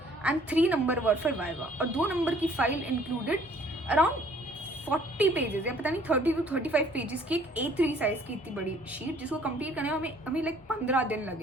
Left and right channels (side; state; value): both; normal; correlation 0.57